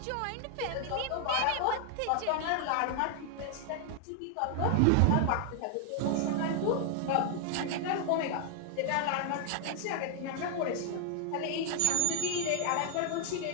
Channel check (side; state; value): both; different; correlation 0.00